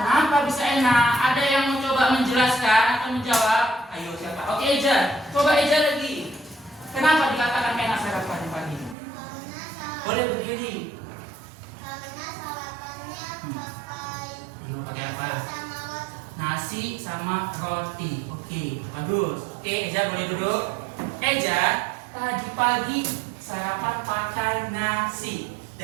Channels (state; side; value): drops out; left; at 9.0 s